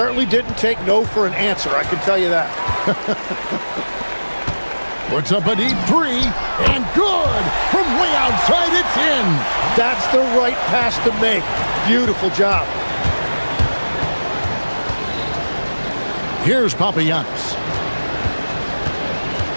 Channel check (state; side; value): inverted; both; correlation -1.00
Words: didn't take no for an answer, I can tell you that. Puts up a deep 3, and good! From way outside, it's in! That's the right pass to make. Beautiful job. Here's Papagiannis.